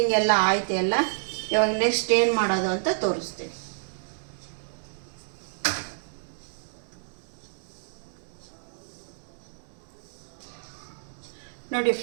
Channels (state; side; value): silent; left; digital silence